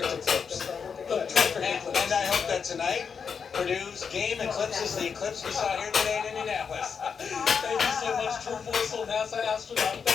eclipse. The perfect eclipse. And I hope that tonight Purdue's game eclipses the eclipse we saw here today in Indianapolis. Thank you so much, Drew Foysel, NASA astronaut.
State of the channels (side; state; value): right; quieter; 6.3 dB